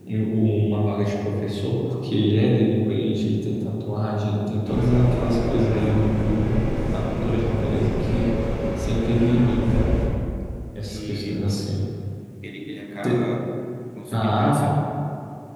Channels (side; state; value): both; identical; correlation 1.00